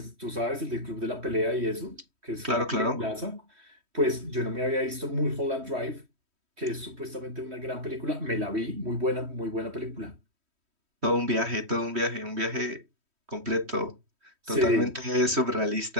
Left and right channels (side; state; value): left; late; 3.1 ms